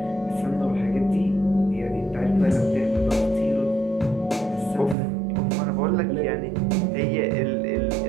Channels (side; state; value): left; drops out; at 5.0 s